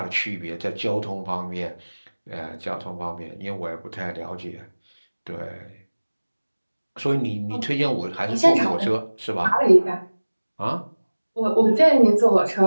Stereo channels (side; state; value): both; inverted; correlation -1.00